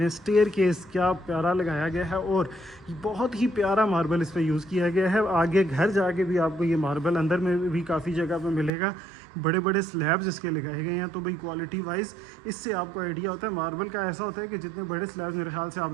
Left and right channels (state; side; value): drops out; left; at 8.7 s